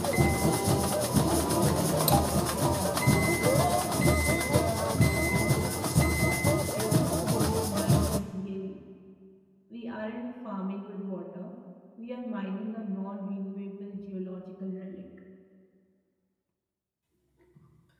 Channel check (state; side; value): identical; both; correlation 1.00